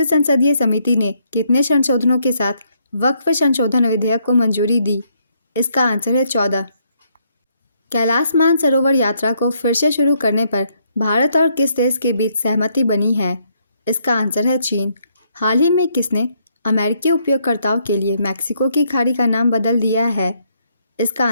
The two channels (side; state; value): both; inverted; correlation -0.72